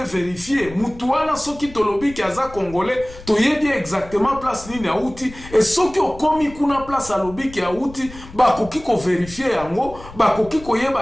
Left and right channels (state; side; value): noise; left; rumble, 17 dB below the sound